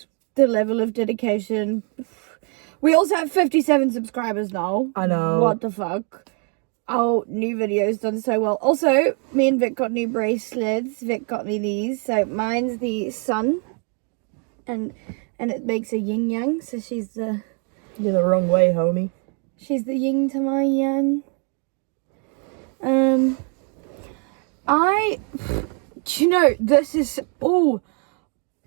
the level of dedication. We also have 57 subscribers now. I know. What the fuck? Our new video's done so well. Also, me and Vic got new bracelets. Vic got me these. So mine's the sun. And it makes a yin yang. So she's the... You're the wrong way, homie. She's the yin to my yang. Do you know, this is... Oh...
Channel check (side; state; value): left; quieter; 37.2 dB